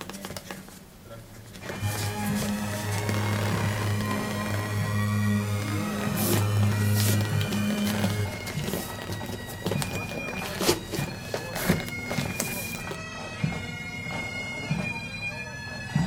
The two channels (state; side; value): identical; both; correlation 1.00